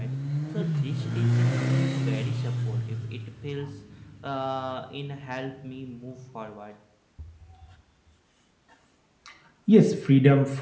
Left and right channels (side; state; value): both; identical; correlation 1.00